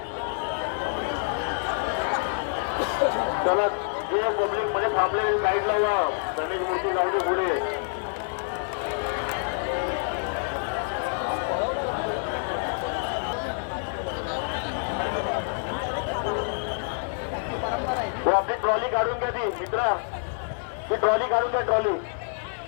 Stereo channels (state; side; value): silent; right; 60 dB below the other